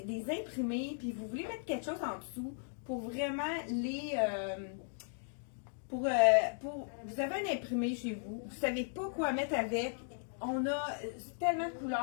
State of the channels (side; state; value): right; silent; digital silence